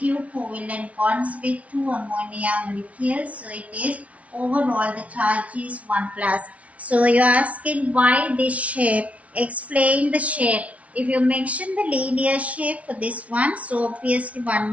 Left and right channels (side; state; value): left; late; 0.066 ms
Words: covalent bonds with 2 ammonia molecules. So it is overall the charge is 1 plus. So you are asking why this shape. Explain the shape. If you mention the linear shape for this one, so obviously 1